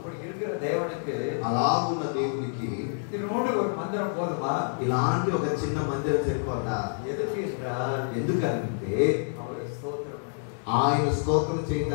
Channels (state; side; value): silent; right; digital silence